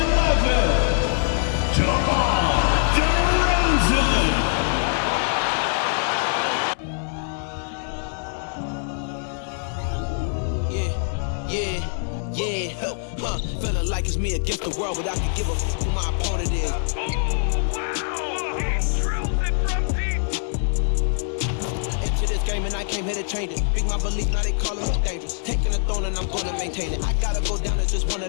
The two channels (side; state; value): right; silent; digital silence